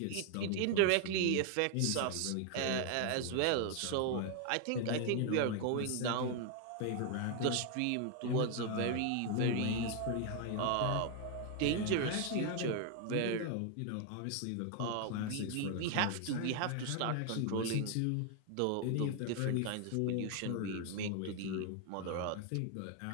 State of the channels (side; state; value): both; different; correlation 0.00